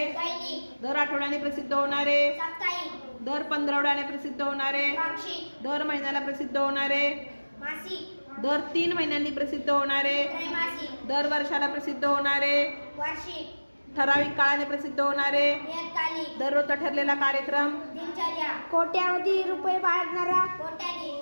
दैनिक, दर आठवड्याने प्रसिद्ध होणारे, साप्ताहिक, दर 15 प्रसिद्ध होणारे, पाक्षिक, दर महिन्याला प्रसिद्ध होणारे, मासिक, दर 3 महिन्यांनी प्रसिद्ध होणारे, त्रैमासिक, दर वर्षाला प्रसिद्ध होणारे, वार्षिक, ठराविक काळाने प्रसिद्ध होणारे, नियतकालिक, दररोजचा ठरलेला कार्यक्रम, दिनचर्या, कोट्यावधी रुपये बाळगणारा,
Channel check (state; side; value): inverted; both; correlation -1.00